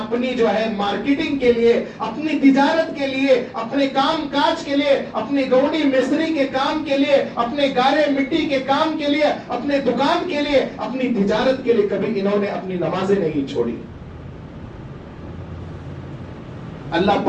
جو ہے مارکیٹنگ کے لیے، اپنی تجارت کے لیے، اپنے کام کاج کے لیے، اپنی گوڑی مستری کے کام کے لیے، اپنے گارے مٹی کے کام کے لیے، اپنے دکان کے لیے، اپنی تجارت کے لیے کبھی انہوں نے اپنی نمازیں نہیں چھوڑی۔ اللہ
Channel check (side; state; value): both; identical; correlation 1.00